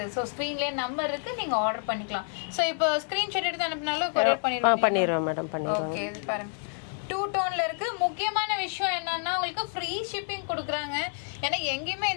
ஸோ ஸ்க்ரீன்லேயே நம்பர் இருக்குது, நீங்கள் ஆர்டர் பண்ணிக்கலாம். ஸோ இப்போ ஸ்க்ரீன்ஷாட் எடுத்து அனுப்பினாலும் கொரியர் பண்ணிடுவோம் மேடம். ஓகே. இது பாருங்கள் 2 டோன்ல இருக்கு. முக்கியமான விஷயம் என்னன்னா உங்களுக்கு ஃப்ரீ ஷிப்பிங் கொடுக்குறாங்க. ஏன்னா எங்கேயுமே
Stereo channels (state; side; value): silent; right; 59 dB below the other